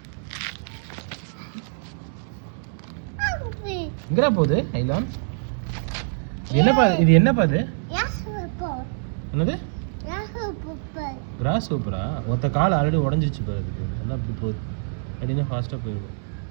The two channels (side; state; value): left; silent; 62 dB below the other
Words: எங்கடா போகுது ஐலான் என்னப்பா இது என்னப்பா இது என்னது கிராஸ் சூப்பரா ஒருத்த கால் ஆல்ரெடி உடஞ்சிருச்சு பாரு அதுக்கு நல்லா அப்படி போகுது அப்படின்னா ஃபாஸ்ட்டாக போயிடும்